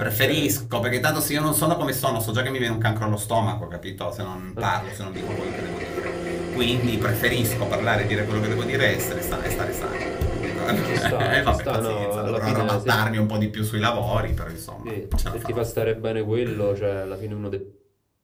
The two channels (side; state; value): both; identical; correlation 1.00